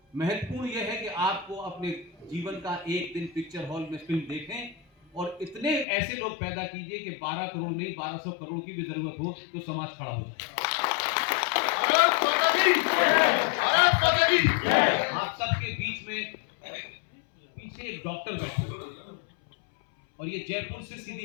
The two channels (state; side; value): drops out; right; at 5.9 s